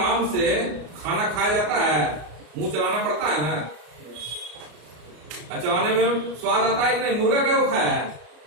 से खाना खाया जाता है, मुंह चलाना पड़ता है ना। चलाने में स्वाद आता है कि नहीं? मुर्गा क्यों खाया है?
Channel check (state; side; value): late; left; 33 ms